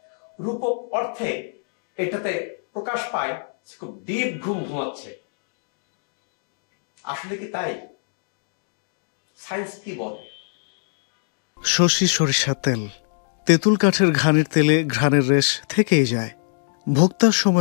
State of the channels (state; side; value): silent; right; digital silence